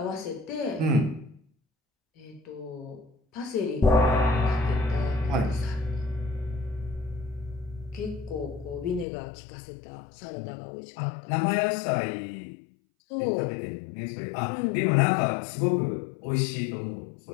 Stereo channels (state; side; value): drops out; right; at 9.1 s